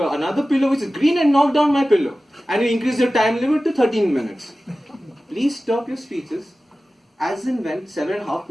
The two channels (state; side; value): normal; both; correlation 0.96